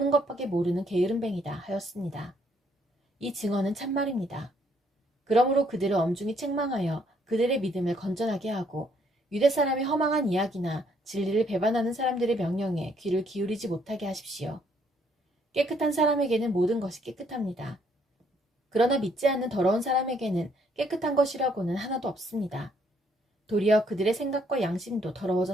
것밖에 모르는 게으름뱅이다 하였습니다. 이 증언은 참말입니다. 그러므로 그들을 엄중히 책망하여 그들의 믿음을 건전하게 하고 유대 사람의 허망한 이야기나 진리를 배반하는 사람들의 명령에 귀를 기울이지 못하게 하십시오. 깨끗한 사람에게는 모든 것이 깨끗합니다. 그러나 믿지 않는 더러운 사람에게는 깨끗한 것이라고는 하나도 없습니다. 도리어 그들의 생각과 양심도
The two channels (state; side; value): normal; both; correlation 0.68